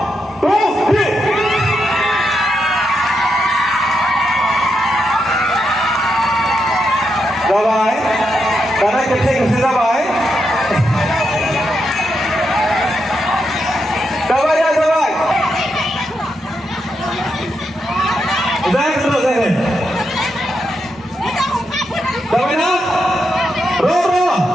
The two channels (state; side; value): normal; both; correlation 0.83